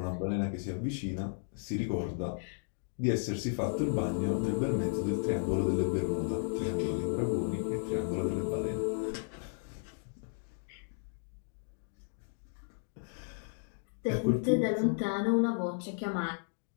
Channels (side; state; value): right; silent; digital silence